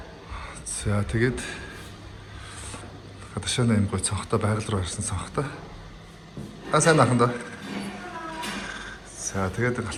За тэгээд гадашааны юм гой цонхтой байгаль руу харсан цонхтой. Сайн ахын даа. За тэгээд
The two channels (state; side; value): identical; both; correlation 1.00